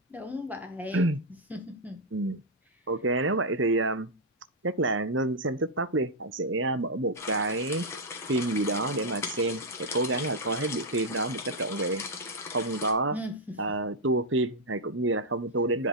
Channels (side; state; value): both; normal; correlation -0.03